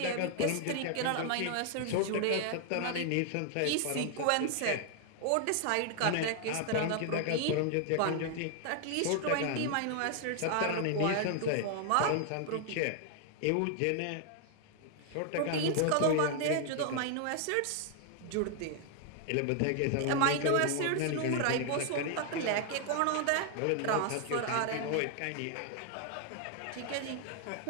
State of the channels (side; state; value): both; different; correlation 0.00